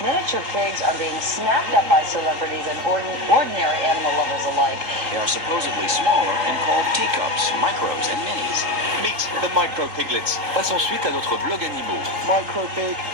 pigs are being snapped up by celebrities and ordinary animal lovers alike. They are supposedly smaller and called teacups, micros, and minis. Meet the micro piglets. Passe ensuite à notre blog animaux. Micro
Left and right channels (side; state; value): left; late; 3.9 ms